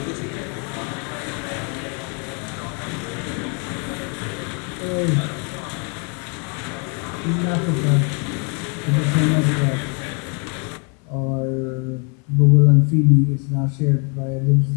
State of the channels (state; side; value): quieter; right; 36.7 dB